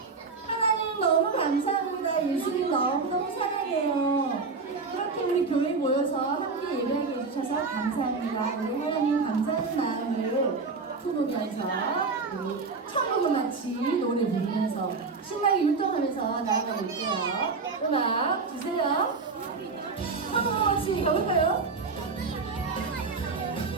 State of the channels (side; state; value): left; quieter; 4.4 dB